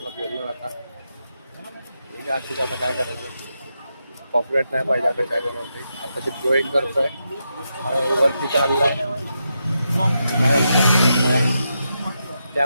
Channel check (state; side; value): inverted; both; correlation -0.85